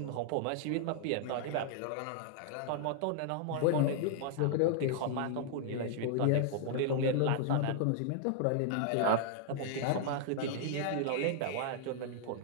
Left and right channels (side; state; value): both; different; correlation -0.01